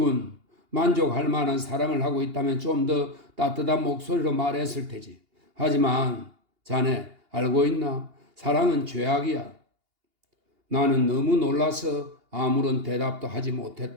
만족할 만한 사랑을 하고 있다면 좀 더 따뜻한 목소리로 말했을 테지. 하지만 자네 알고 있나? 사랑은 죄악이야. 나는 너무 놀라서 아무런 대답도 하지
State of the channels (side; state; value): left; late; 2.8 ms